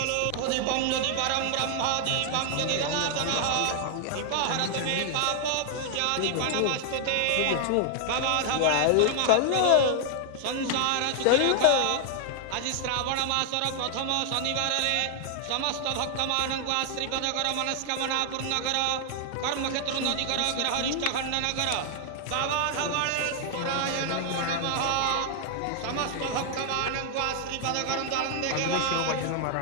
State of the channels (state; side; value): different; both; correlation 0.00